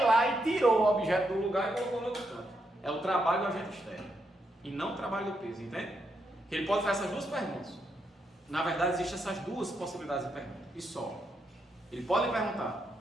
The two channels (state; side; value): normal; both; correlation 0.80